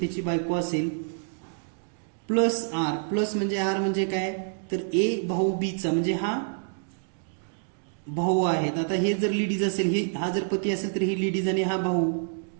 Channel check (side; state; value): left; silent; digital silence